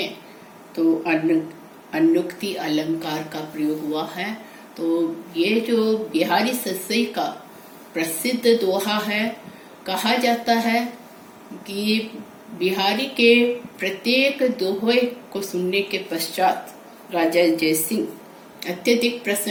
तो अनुक्ति अलंकार का प्रयोग हुआ है। तो ये जो बिहारी सस्सी का प्रसिद्ध दोहा है, कहा जाता है कि बिहारी के प्रत्येक दोहे को सुनने के पश्चात राजा जयसिंह अत्यधिक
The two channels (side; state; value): both; identical; correlation 1.00